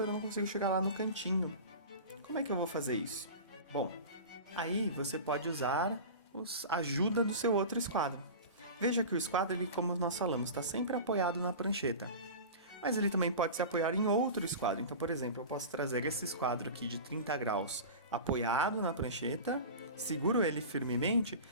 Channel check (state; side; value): inverted; both; correlation -0.32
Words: eu não consigo chegar lá no cantinho. Como é que eu vou fazer isso? Bom, aí você pode usar a ajuda do seu outro esquadro. Veja que o esquadro, ele, como nós falamos, está sempre apoiado na prancheta. Mas ele também pode se apoiar em outro esquadro. Então, por exemplo, eu posso trazer esse esquadro aqui de 30 graus apoiado na prancheta, seguro ele firmemente